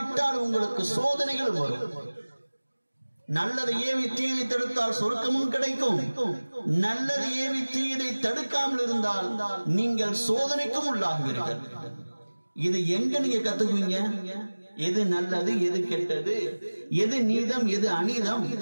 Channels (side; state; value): both; inverted; correlation -1.00